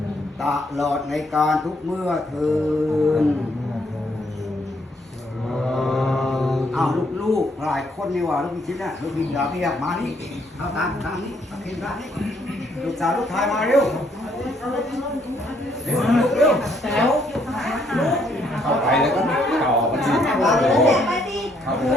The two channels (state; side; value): normal; both; correlation 0.70